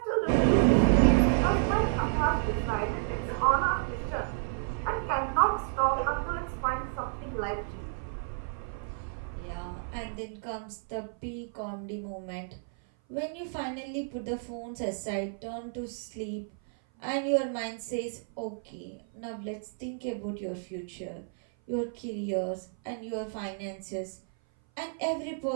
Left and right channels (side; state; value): left; silent; 56 dB below the other